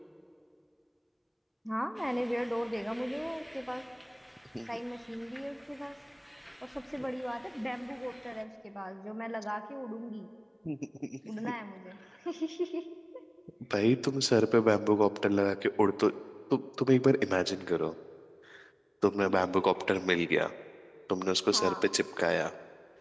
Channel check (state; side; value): identical; both; correlation 1.00